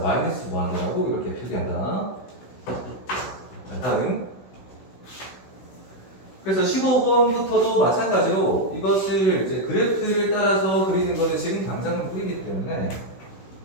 마이너스 무한대라고 이렇게 표기한다. 자 다음. 그래서 15번부터도 마찬가지로 이것을 이제 그래프를 따라서 그리는 거는 지금 당장은 뿌리기 때문에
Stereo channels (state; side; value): late; right; 16 ms